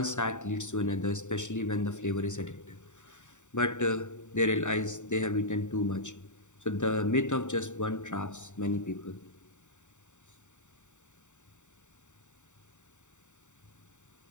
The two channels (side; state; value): right; late; 0.84 ms